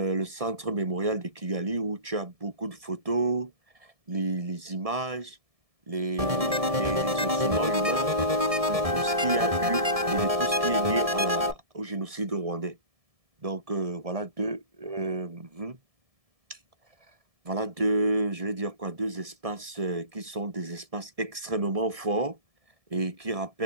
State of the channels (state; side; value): late; left; 1.7 ms